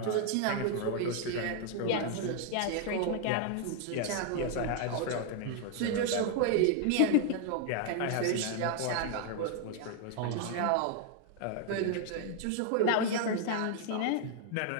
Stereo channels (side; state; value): both; different; correlation 0.00